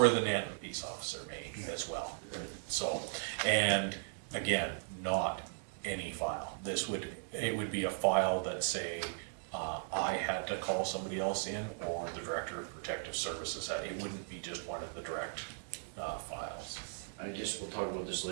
the Nanton peace officer may as well. So, and again, not any file. It would be a file that say, I had to call somebody else in, or the Director of Protective Services had. It wouldn't be just one of the direct files. I guess we'll talk about this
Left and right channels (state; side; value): silent; left; 53 dB below the other